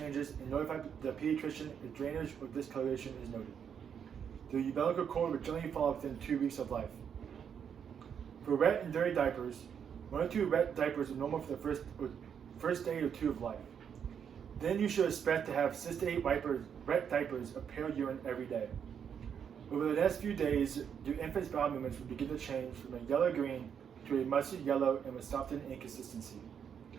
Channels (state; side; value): quieter; left; 7.8 dB